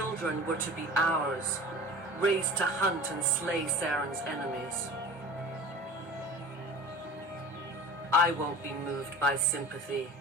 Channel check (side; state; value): both; normal; correlation 0.40